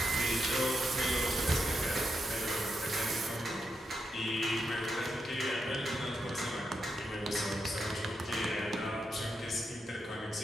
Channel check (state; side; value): normal; both; correlation 0.84